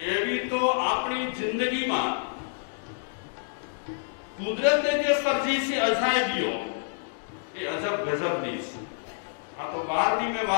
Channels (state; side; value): silent; right; digital silence